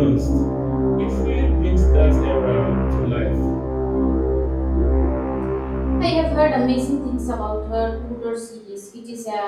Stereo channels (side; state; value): both; identical; correlation 1.00